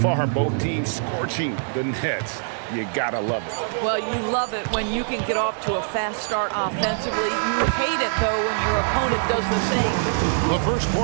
both teams scorching the Nets. You gotta love it. Well, you love it when you can get off to a fast start offensively. You hate it, though, when your opponent does the same. The first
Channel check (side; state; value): left; silent; 63 dB below the other